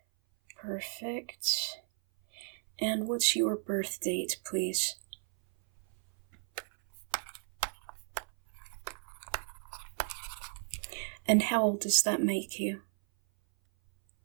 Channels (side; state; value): left; silent; 55 dB below the other